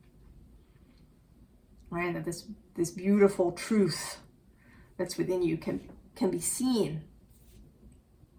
Right, that this beautiful truth that's within you can be seen.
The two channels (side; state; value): both; identical; correlation 1.00